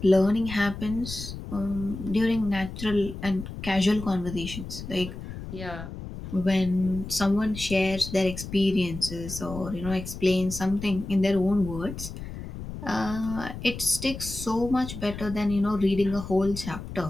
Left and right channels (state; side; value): noise; left; rumble, 10 dB below the sound